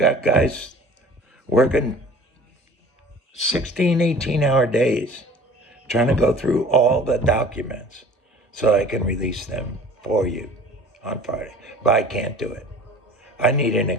guys working 16, 18-hour days trying to go through all the documents so I can release them for you on Friday. But I can't do it. I need an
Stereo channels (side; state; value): both; normal; correlation 0.46